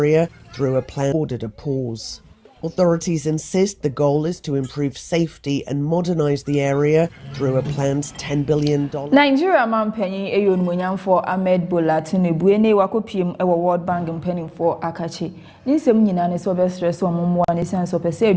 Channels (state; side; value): identical; both; correlation 1.00